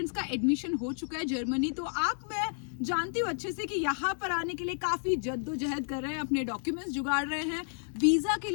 का एडमिशन हो चुका है जर्मनी। तो मैं जानती हूँ अच्छे से कि यहाँ पर आने के लिए काफी जद्दोजहद कर रहे हैं, अपने डॉक्यूमेंट्स जुगाड़ रहे हैं, वीजा के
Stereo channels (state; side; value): silent; right; 57 dB below the other